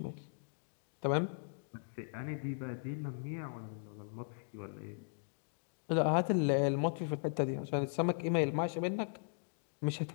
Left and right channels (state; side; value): silent; right; digital silence